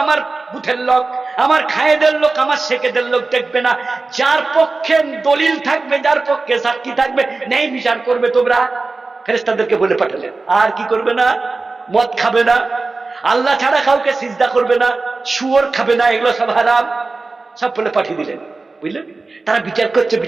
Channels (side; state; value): left; quieter; 3.7 dB